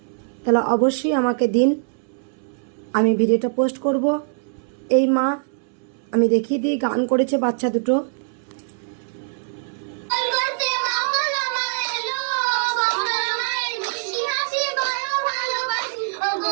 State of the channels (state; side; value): silent; left; 61 dB below the other